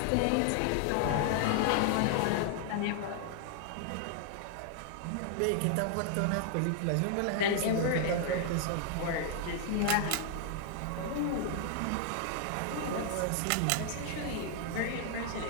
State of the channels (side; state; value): both; different; correlation 0.00